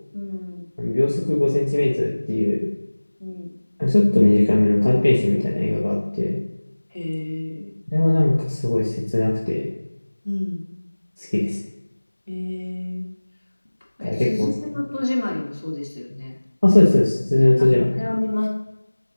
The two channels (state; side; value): inverted; both; correlation -1.00